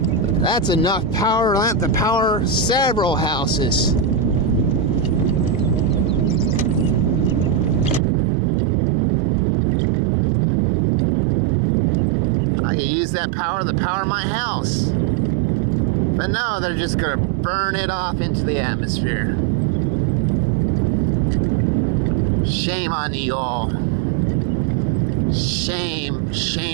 That's enough power to power several houses. I could use that power to power my house. But no, they're just gonna burn it off into the atmosphere. Shame on you all. Shame,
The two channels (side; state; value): left; drops out; at 8.0 s